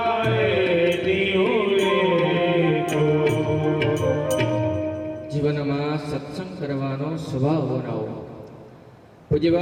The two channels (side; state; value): both; identical; correlation 1.00